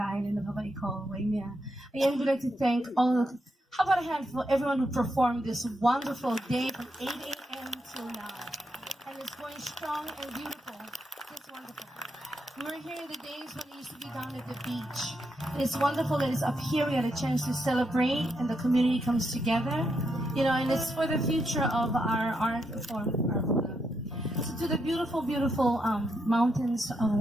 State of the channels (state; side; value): normal; both; correlation 0.82